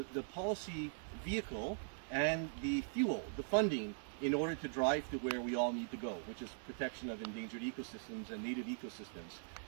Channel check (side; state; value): left; silent; digital silence